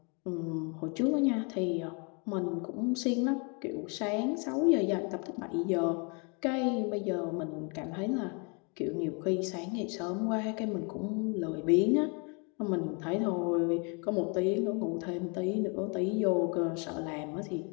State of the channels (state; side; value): quieter; right; 34.4 dB